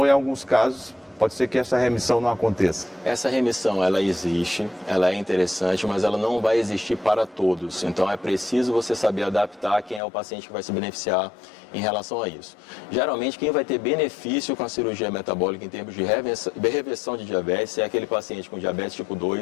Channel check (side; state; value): right; drops out; at 10.0 s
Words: em alguns casos pode ser que essa remissão não aconteça. Essa remissão, ela existe, ela é interessante, mas ela não vai existir para todos. Então, é preciso você saber adaptar quem é o paciente que vai se beneficiar em relação a isso. Geralmente, quem vai ter benefício com a cirurgia metabólica em termos de reversão de diabetes é aquele paciente com diabetes tipo